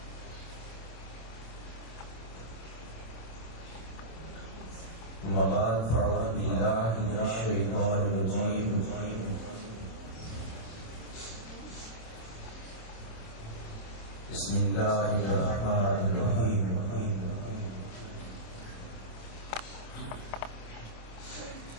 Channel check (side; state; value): right; late; 26 ms